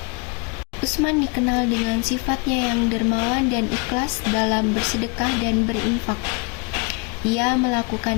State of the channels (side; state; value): right; quieter; 31.8 dB